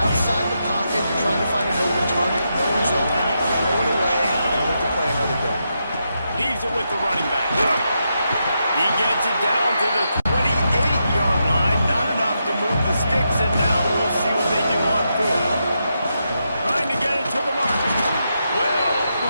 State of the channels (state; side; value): inverted; both; correlation -0.84